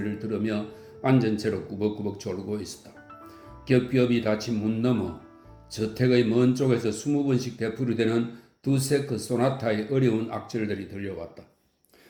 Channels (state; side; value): identical; both; correlation 1.00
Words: 들으며 앉은 채로 꾸벅꾸벅 졸고 있었다. 겹겹이 닫힌 문 너머 저택의 먼 쪽에서 20번씩 되풀이되는 두세 그 소나타의 어려운 악절들이 들려왔다.